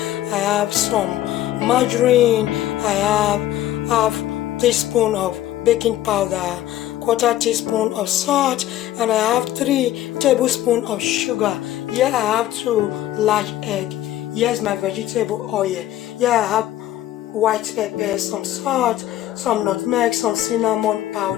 have some margarine, I have half teaspoon of baking powder, quarter teaspoon of salt, and I have 3 tablespoons of sugar. Here I have 2 large egg. Here's my vegetable oil. Here I have white pepper, some salt, some nutmeg, some cinnamon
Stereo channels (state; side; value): quieter; right; 13.6 dB